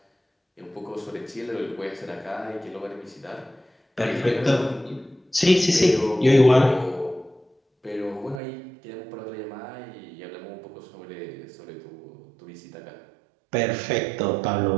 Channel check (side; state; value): left; drops out; at 8.4 s